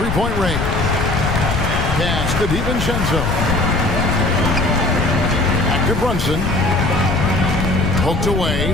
range. Pass to DiVincenzo. Back to Brunson. Poked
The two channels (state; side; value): noise; left; rumble, 2 dB below the sound